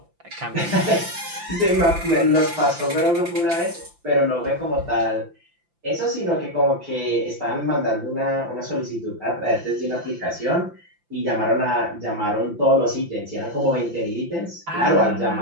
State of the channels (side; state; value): left; late; 5.8 ms